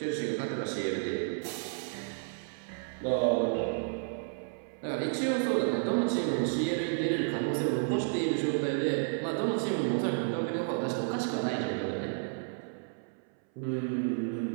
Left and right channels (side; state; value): left; silent; 57 dB below the other